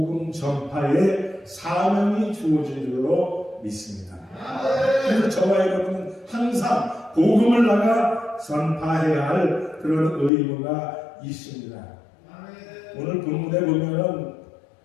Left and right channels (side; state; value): right; drops out; at 10.3 s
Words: 전파에 사명이 주어진 줄로 믿습니다. 그래서 저와 여러분은 항상 복음을 나가 전파해야 할 그런 의무가 있습니다. 오늘 본문에 보면은